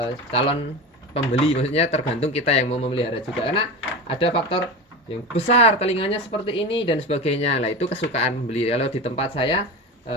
calon pembeli, maksudnya tergantung kita yang mau memelihara juga, karena ada faktor yang besar telinganya seperti ini dan sebagainya. Lah itu kesukaan pembeli. Kalau di tempat saya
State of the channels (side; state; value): both; normal; correlation 0.26